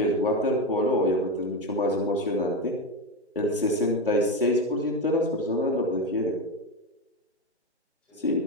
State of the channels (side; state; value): both; normal; correlation 0.16